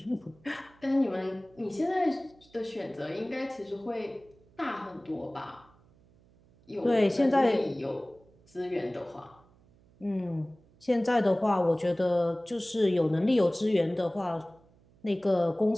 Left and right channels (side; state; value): right; noise; hum, 29 dB below the sound